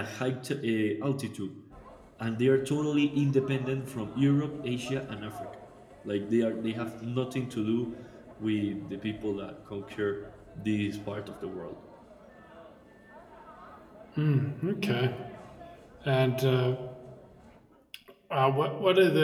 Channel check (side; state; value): both; identical; correlation 1.00